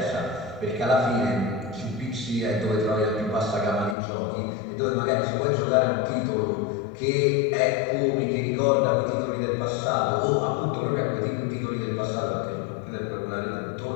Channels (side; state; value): right; drops out; at 4.0 s